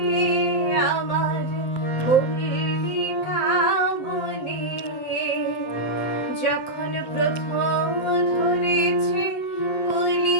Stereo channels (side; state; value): right; late; 7.7 ms